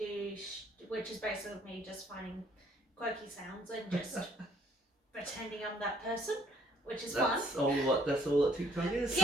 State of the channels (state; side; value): normal; both; correlation 0.64